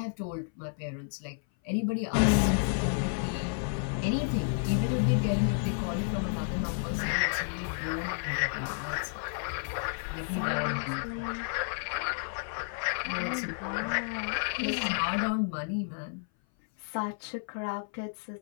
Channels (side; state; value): right; silent; 57 dB below the other